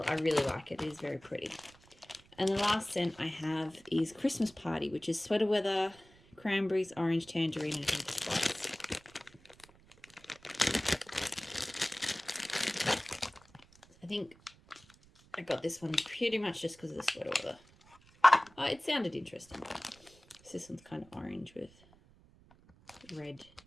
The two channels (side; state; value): right; noise; rumble, 27 dB below the sound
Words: I really like it. It is very pretty. And the last scent I have is Christmas Party, which is sweater weather, cranberries, orange, tangerine, and pink spice. I think I got this one pretty much just because of the sweater weather. It sounded interesting. So this one's kind of orange with red